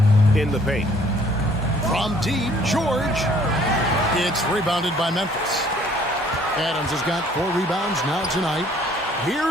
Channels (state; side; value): normal; both; correlation 0.59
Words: in the paint. From deep, George. It's rebounded by Memphis. Adams has got 4 rebounds now tonight.